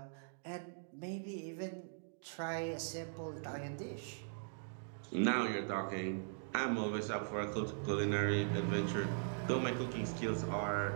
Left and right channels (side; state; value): left; silent; digital silence